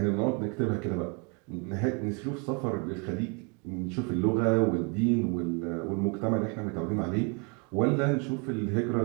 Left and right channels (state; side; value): quieter; left; 33.6 dB